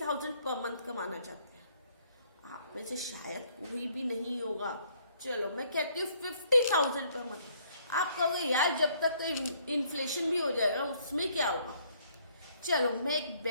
पर मंथ कमाना चाहते हैं? आप में से शायद कोई भी नहीं होगा। चलो मैं कहती हूँ 50,000 पर मंथ। आप कहोगे यार जब तक तो इन्फ्लेशन भी हो जाएगा, उसमें क्या होगा? चलो मैं एक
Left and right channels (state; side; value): inverted; both; correlation -0.64